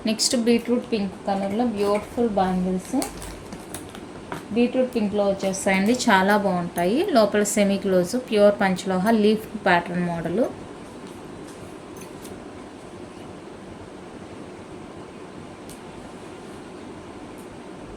Next beetroot pink కలర్లో బ్యూటిఫుల్ బ్యాంగిల్స్. బీట్రూట్ పింక్లో వచ్చేస్తాయండి, చాలా బాగుంటాయి. లోపల సెమీ క్లోజ్, ప్యూర్ పంచలోహ, leaf pattern model.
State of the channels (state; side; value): identical; both; correlation 1.00